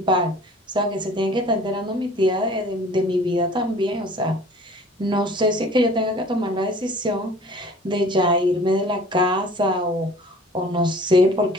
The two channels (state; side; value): normal; both; correlation 0.48